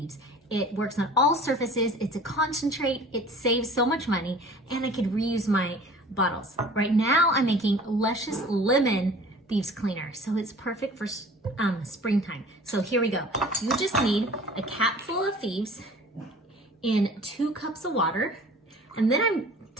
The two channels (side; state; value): both; normal; correlation 0.46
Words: It works on all surfaces, it's a concentrate, it saves so much money, and I could reuse my bottles. Right now I'm making Luscious Lemon Thieves Cleaner, so it's perfect for springtime. So here we go. You just need a capful of Thieves in 2 cups of water, and then